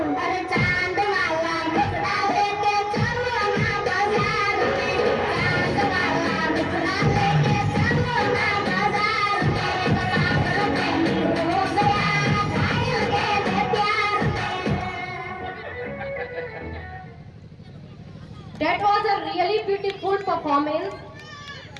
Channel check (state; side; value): identical; both; correlation 1.00